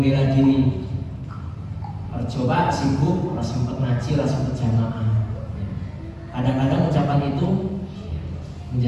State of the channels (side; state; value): both; identical; correlation 1.00